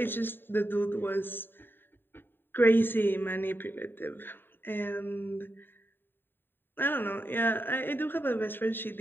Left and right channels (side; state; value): right; late; 0.097 ms